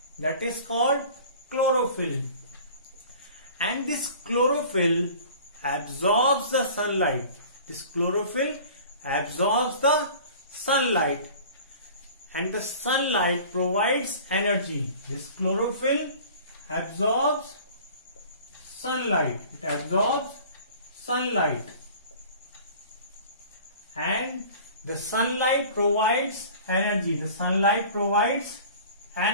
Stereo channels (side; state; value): both; inverted; correlation -0.44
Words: that is called chlorophyll. And this chlorophyll absorbs the sunlight. And the sunlight provides energy. This chlorophyll absorbs sunlight. And the sunlight provides